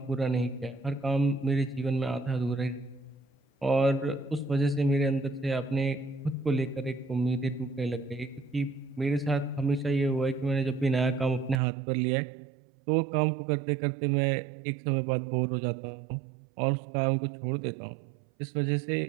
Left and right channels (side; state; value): left; drops out; at 11.6 s